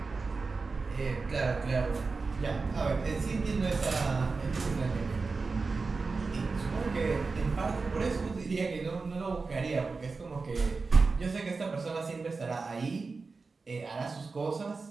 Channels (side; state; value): left; quieter; 4.2 dB